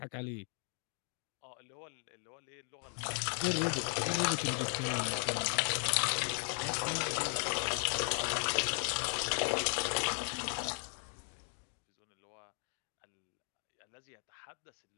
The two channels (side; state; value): right; silent; 53 dB below the other